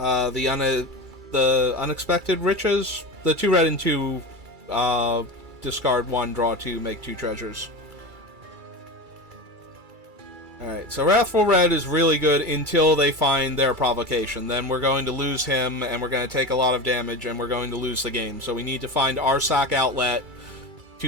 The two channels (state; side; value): late; left; 2.3 ms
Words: Riches, the 2 red and 2 discard 1, draw 2, make 2 treasures. Alright, so Wrathful Red is really good until they find their provocation. Then we're going to lose him, and we're going to take a lot of damage, and we're going to lose the game. So we need to find our sack outlet